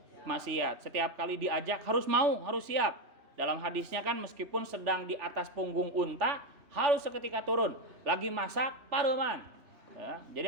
Setiap kali diajak harus mau, harus siap. Dalam hadisnya kan meskipun sedang di atas punggung unta harus seketika turun. Lagi masak paruman. Ya,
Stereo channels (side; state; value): left; late; 3.4 ms